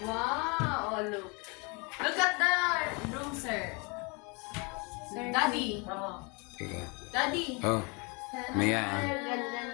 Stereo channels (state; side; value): quieter; right; 30.8 dB